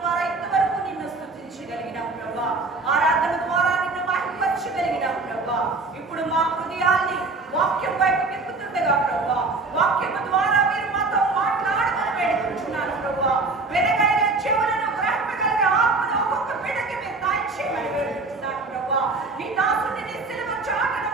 ఇంతవరకు నిన్ను స్తుతించగలిగినాం ప్రభువా, ఆరాధన ద్వారా నిన్ను మహిమపరచగలిగినాం ప్రభువా. ఇప్పుడు మా హృదయాల్ని వాక్యం వైపు తిప్పుతుండగా ప్రభువా, వాక్యము ద్వారా మీరు మాతో మాట్లాడమని వేడుకుంటున్నాను ప్రభువా. వెనకైన చెవులను గ్రహింపగలిగే ఆత్మను ఒక్కొక్క బిడ్డకి మీరు దయచేయమని వేడుకుంటున్నాను ప్రభువా. నీ దాసుని నీ సిలువ చాటును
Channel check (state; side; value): quieter; left; 3.6 dB